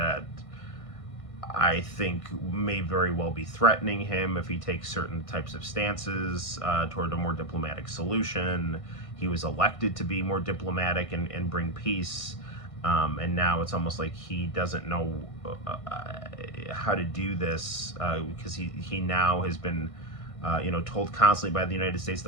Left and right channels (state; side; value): late; right; 1.6 ms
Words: I think may very well be threatening him if he takes certain types of stances toward a more diplomatic solution. He was elected to be more diplomatic and bring peace. And now it's almost like he doesn't know how to do this, because he now has been, told constantly by the United States